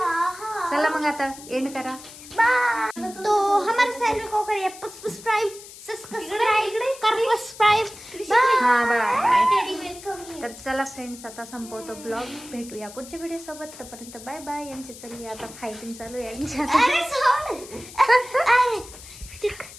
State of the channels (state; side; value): noise; left; hiss, 16 dB below the sound